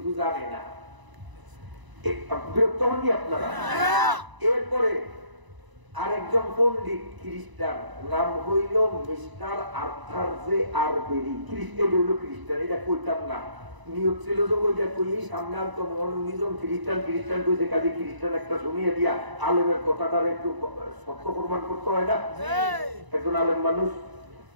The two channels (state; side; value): late; left; 1.0 ms